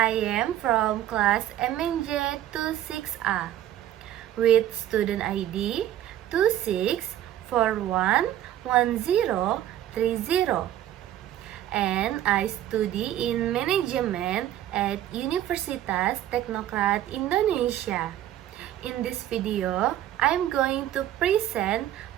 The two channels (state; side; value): quieter; left; 12.3 dB